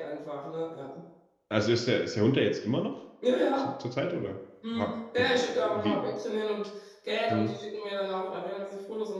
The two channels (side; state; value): both; identical; correlation 1.00